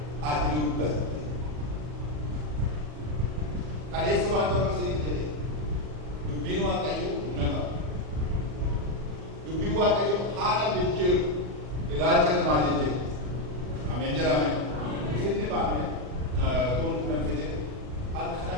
kaleessa waan tokko isiniif jedhe dubbiin Waaqayyoo humna qaba. Dubbiin Waaqayyoo haala jijjiiru ilaalcha namaa jijjiiru. Ameen jedhame. Isinni baame tuun kunan fide akka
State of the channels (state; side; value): late; left; 40 ms